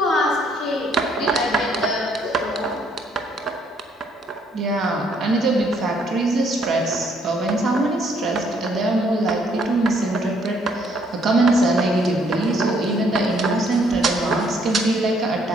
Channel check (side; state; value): both; normal; correlation 0.67